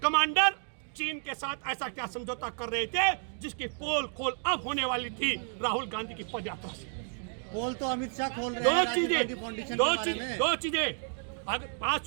चीन के साथ ऐसा क्या समझौता कर रहे थे जिसकी पोल खोल अब होने वाली थी राहुल गांधी की पद यात्रा से। पोल तो अमित शाह खोल रहे हैं। दो चीजें बात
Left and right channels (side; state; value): left; silent; 57 dB below the other